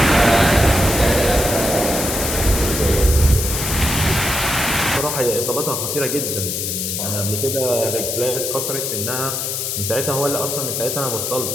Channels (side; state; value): left; noise; hiss, 2 dB below the sound